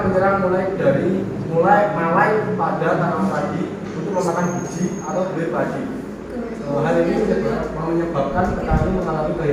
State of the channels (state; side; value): identical; both; correlation 1.00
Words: menyerang mulai malai pada tanaman padi untuk memakan biji atau buih padi. Hal ini menyebabkan petani mengalami